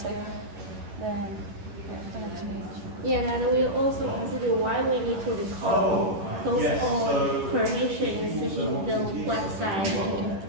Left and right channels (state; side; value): late; left; 11 ms